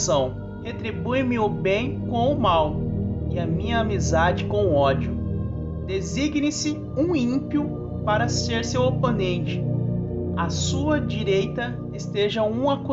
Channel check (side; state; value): both; identical; correlation 1.00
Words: Retribui-me o bem com o mal e a minha amizade com o ódio. Designe-se um ímpio para ser seu oponente. À sua direita esteja um